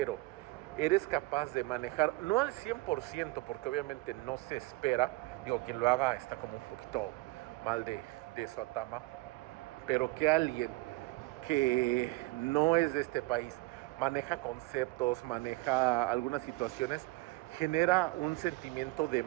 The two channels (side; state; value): left; quieter; 21.6 dB